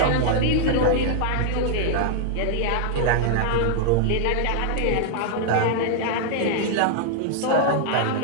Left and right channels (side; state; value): both; different; correlation -0.01